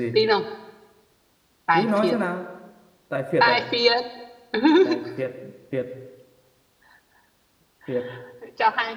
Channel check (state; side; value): identical; both; correlation 1.00